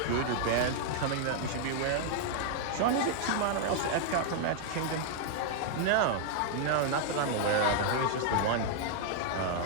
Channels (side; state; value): both; different; correlation -0.01